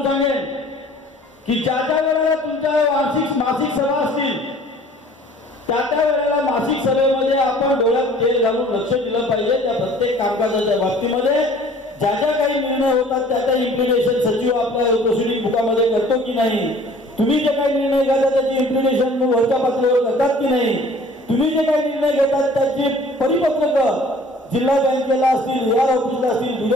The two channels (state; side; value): normal; both; correlation 0.51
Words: सांगेन की ज्या वेळेला तुमच्या मासिक सभा असतील त्या वेळेला मासिक सभेमध्ये आपण डोळ्यात तेल घालून लक्ष दिलं पाहिजे. त्या प्रत्येक कामकाजाच्या बाबतीमध्ये ज्या काही निर्णय होतात त्याचा इम्प्लिमेंटेशन सचिव आपल्या प्रोसिडिंग बुकामध्ये करतो की नाही, तुम्ही जे काही निर्णय घेता त्याची इम्प्लिमेंटेशन वरच्या पातळीवर करतात की नाही, तुम्ही जे काही निर्णय घेतात त्याची परिपत्रक जिल्हा बँकेला असतील, AR ऑफिसला असतील,